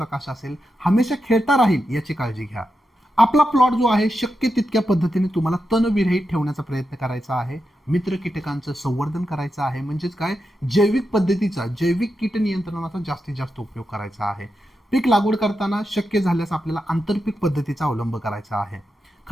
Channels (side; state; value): both; normal; correlation 0.88